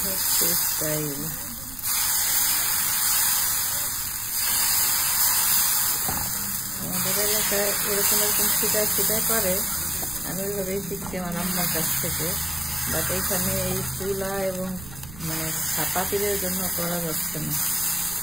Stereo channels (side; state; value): right; noise; rumble, 14 dB below the sound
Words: হচ্ছে স্টাইল। আমাদের এলাকায় এরকম এরকম ছিটায় ছিটায় করে, আমি ওইভাবেই শিখছি আমার আম্মার কাছ থেকে। বাট এইখানে এই চুলা এবং মানে পাতিলের জন্য করা যাচ্ছে না।